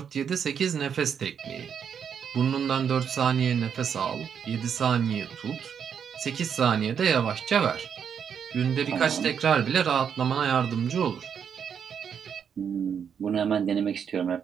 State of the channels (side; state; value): left; quieter; 7.6 dB